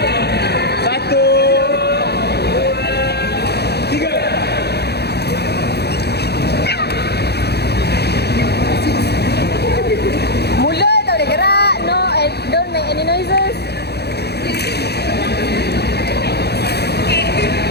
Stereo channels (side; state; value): right; late; 0.48 ms